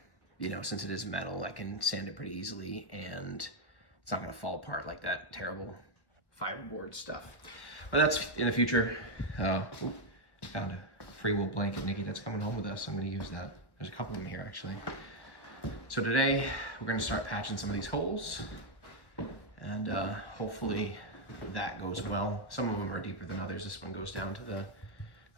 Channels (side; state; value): right; late; 1.1 ms